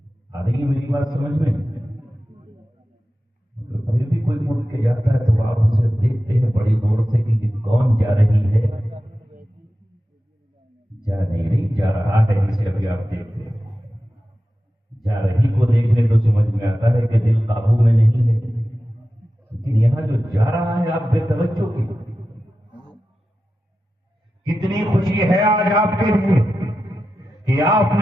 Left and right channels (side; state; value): both; normal; correlation 0.92